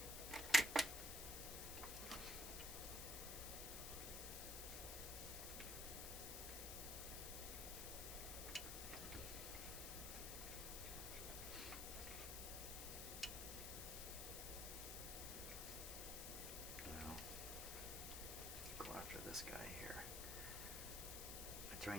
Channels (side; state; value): left; noise; hiss, 3 dB below the sound